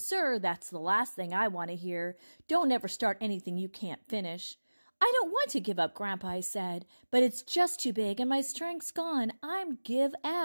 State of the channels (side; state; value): both; inverted; correlation -1.00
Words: that's the last thing I want to hear. Don't ever start anything you can't finish." "I don't want to give up, Grandpa," I said, "but it's just too big and my strength's gone. I'm give